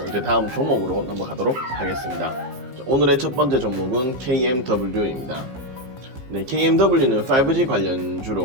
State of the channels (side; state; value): left; late; 15 ms